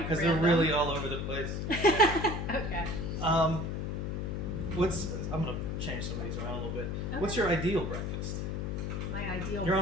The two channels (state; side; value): noise; left; hum, 2 dB below the sound